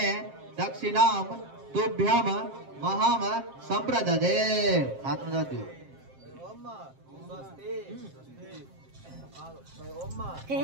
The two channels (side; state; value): left; late; 7.5 ms